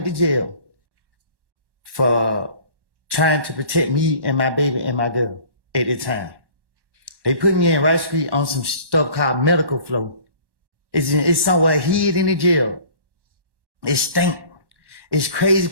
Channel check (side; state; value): left; late; 1.1 ms